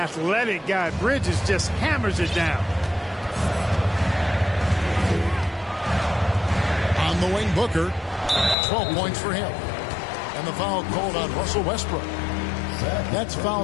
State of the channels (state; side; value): drops out; right; at 8.6 s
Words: guy. Bridges just hammers it down. On the wing, Booker. 12 points for him. And the foul called on Russell Westbrook. That's foul